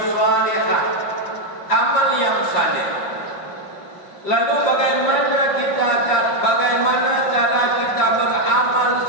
salihah, amal yang saleh. Lalu bagaimana cara kita beramal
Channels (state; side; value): late; right; 5.8 ms